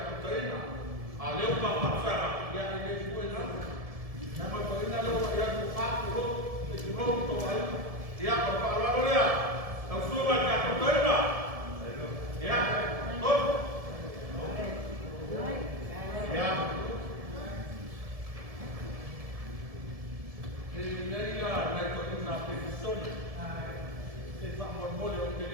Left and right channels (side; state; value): left; late; 1.7 ms